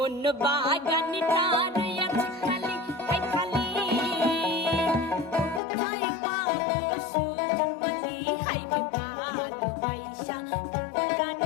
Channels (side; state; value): right; drops out; at 5.6 s